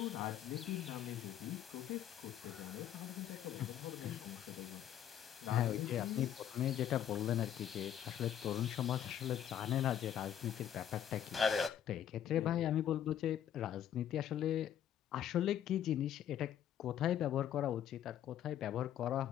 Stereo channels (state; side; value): quieter; right; 10.2 dB